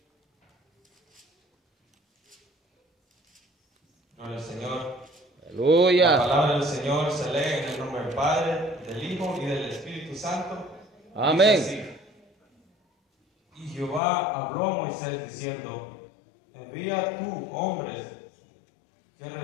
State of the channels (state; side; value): drops out; right; at 14.0 s